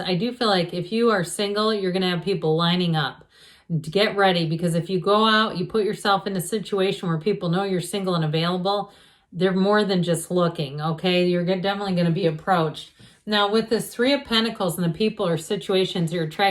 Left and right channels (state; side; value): identical; both; correlation 1.00